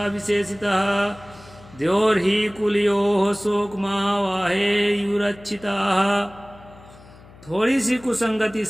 विशेषितः द्योर्हि कुलयोः शोकमावाहे युरक्षिताः। थोड़ी सी कुसंगति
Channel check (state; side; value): noise; left; hum, 22 dB below the sound